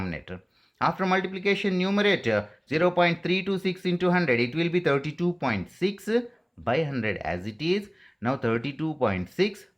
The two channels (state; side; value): identical; both; correlation 1.00